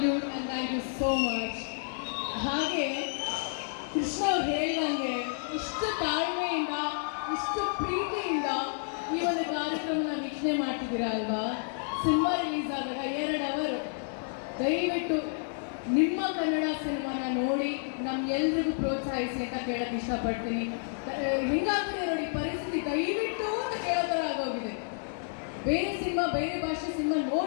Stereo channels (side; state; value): right; silent; digital silence